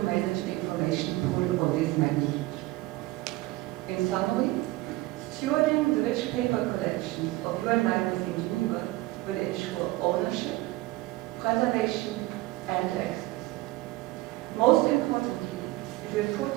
the information pool of this magnitude. In summary, stewarding the rich paper collections of UN libraries in Geneva will ensure ownership, preservation, and access. Most importantly, it will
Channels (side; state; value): left; quieter; 19.3 dB